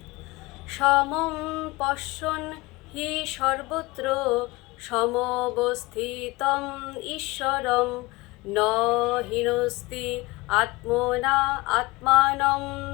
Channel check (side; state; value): right; quieter; 22.6 dB